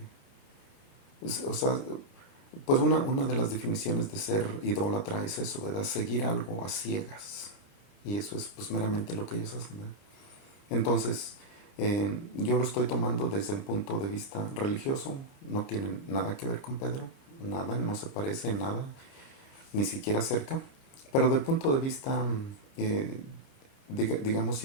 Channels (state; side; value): late; right; 29 ms